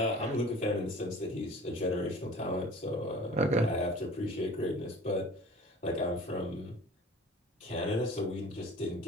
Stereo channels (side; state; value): both; normal; correlation 0.43